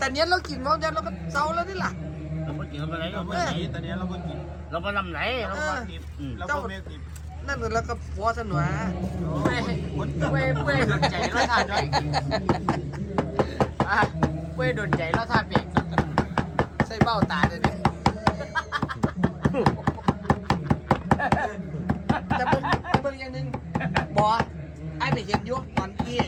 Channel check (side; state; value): both; identical; correlation 1.00